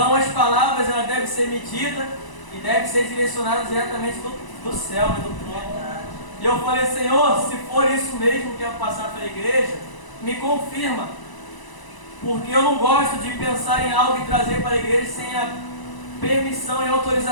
as palavras elas devem ser medidas e devem ser direcionadas diretamente do céu, do trono. E eu falei, Senhor, se for isso mesmo que eu passar para a igreja, me confirma, porque eu não gosto de pensar em algo e trazer para a igreja sem a permissão e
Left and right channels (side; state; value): right; late; 1.0 ms